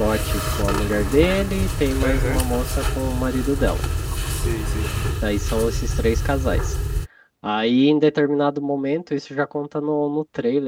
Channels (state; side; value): identical; both; correlation 1.00